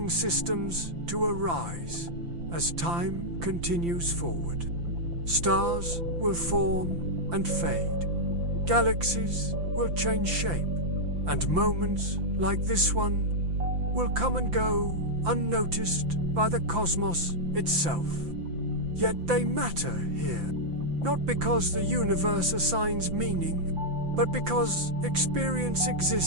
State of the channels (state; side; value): late; left; 5.9 ms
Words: systems to arise as time continues forward. Stars will form and fade. Galaxies will change shape, and moments like this one will come and go unnoticed by the cosmos itself. Yet they matter here, not because the universe assigns meaning, but because experience